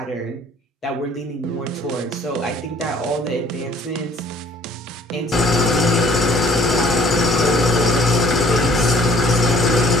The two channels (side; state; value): both; normal; correlation 0.56